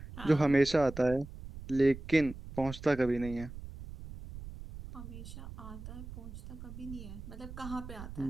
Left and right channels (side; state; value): right; noise; rumble, 12 dB below the sound